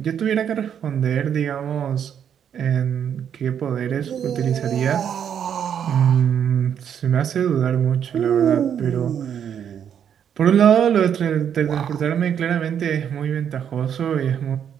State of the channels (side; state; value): left; quieter; 8.6 dB